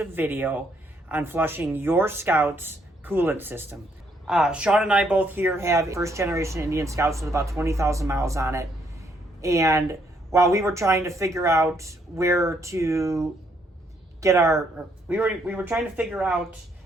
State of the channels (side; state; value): both; normal; correlation 0.71